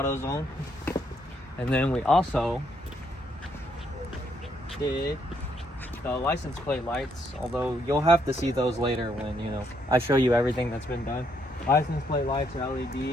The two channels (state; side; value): normal; both; correlation 0.73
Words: And then we also did the license plate lights, although you'll have to see those later when, you know, I show you everything that's been done. License plate lights are